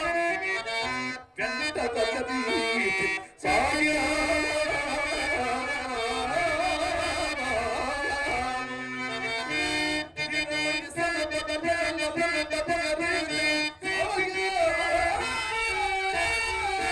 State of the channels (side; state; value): both; identical; correlation 1.00